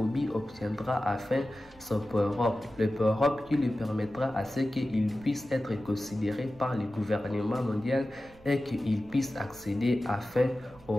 obtiendra enfin son power-up, le power-up qui lui permettra à ce qu'il puisse être considéré par le gouvernement mondial et qu'il puisse accéder enfin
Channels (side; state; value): right; noise; rumble, 25 dB below the sound